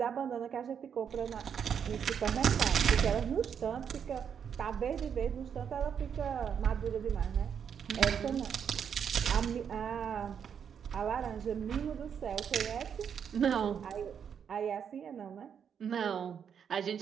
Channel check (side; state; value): left; quieter; 7.7 dB